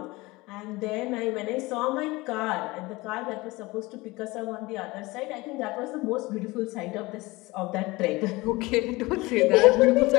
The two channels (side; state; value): right; quieter; 21.9 dB